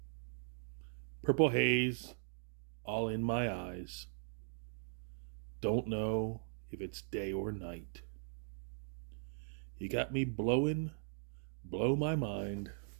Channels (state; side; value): silent; left; digital silence